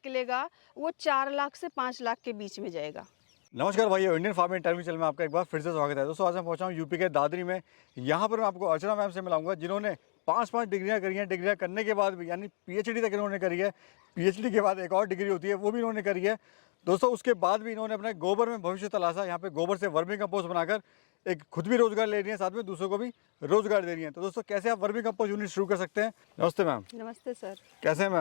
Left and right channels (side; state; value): right; silent; 57 dB below the other